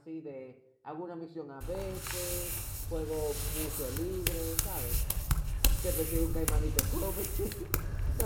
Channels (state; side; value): identical; both; correlation 1.00